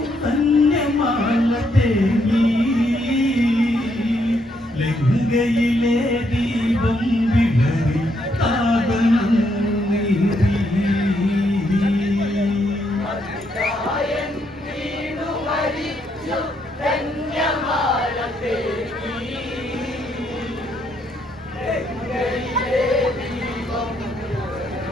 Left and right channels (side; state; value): both; normal; correlation 0.75